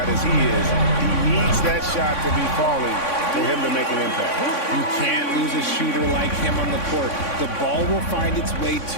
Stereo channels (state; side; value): late; right; 3.6 ms